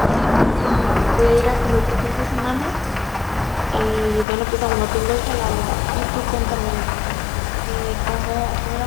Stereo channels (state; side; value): drops out; right; at 4.2 s